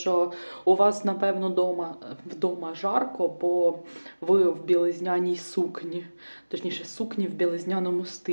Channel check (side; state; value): both; inverted; correlation -1.00